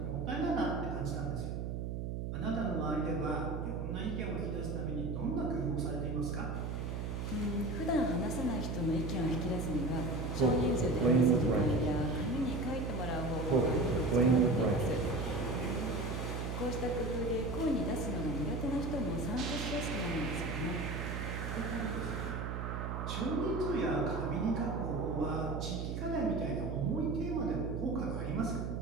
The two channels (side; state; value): right; noise; hum, 3 dB below the sound